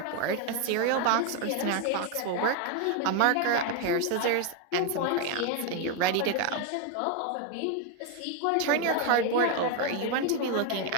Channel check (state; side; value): different; both; correlation 0.01